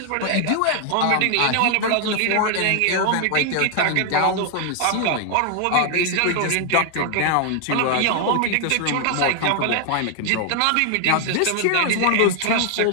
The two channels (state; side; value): different; both; correlation 0.00